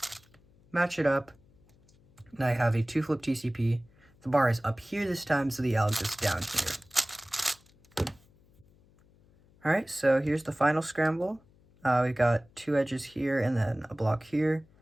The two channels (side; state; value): left; noise; hum, 30 dB below the sound